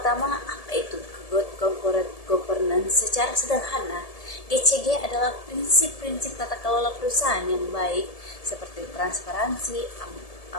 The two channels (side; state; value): right; late; 1.7 ms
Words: apa itu Good Corporate Governance? Secara sederhana, GCG adalah prinsip-prinsip tata kelola perusahaan yang baik seperti transparansi,